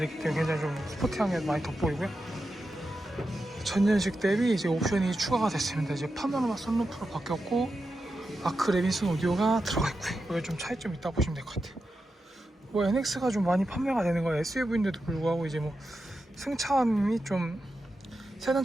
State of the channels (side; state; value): both; normal; correlation 0.89